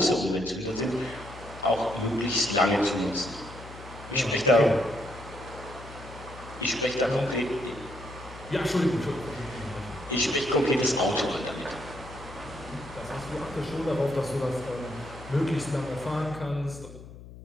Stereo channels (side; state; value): left; noise; hum, 16 dB below the sound